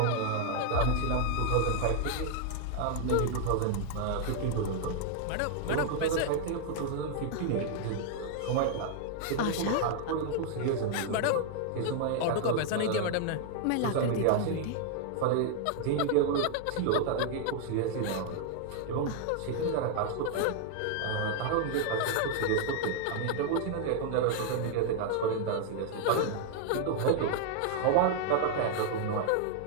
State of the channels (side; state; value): both; different; correlation 0.00